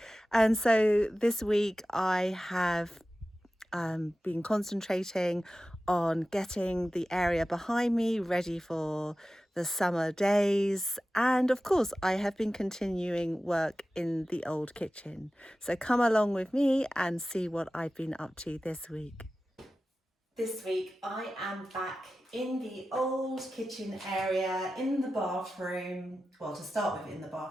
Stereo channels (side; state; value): both; normal; correlation 0.95